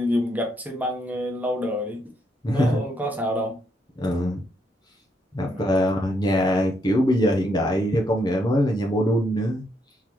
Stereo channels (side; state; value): both; normal; correlation 0.76